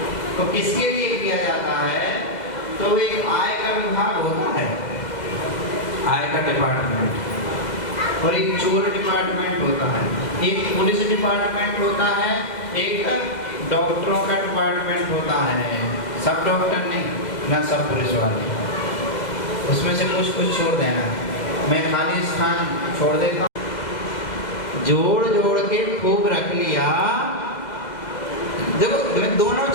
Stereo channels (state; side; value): late; right; 2.0 ms